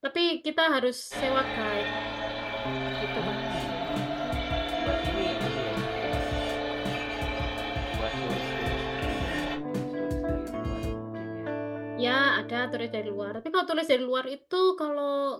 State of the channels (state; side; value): identical; both; correlation 1.00